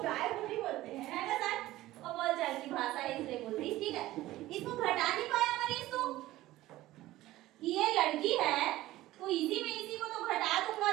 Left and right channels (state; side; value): quieter; left; 16.3 dB